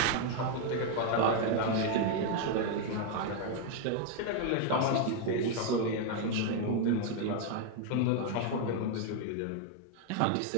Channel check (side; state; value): both; different; correlation 0.01